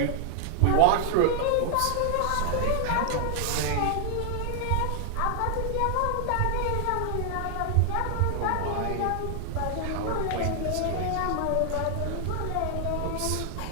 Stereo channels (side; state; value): both; different; correlation 0.00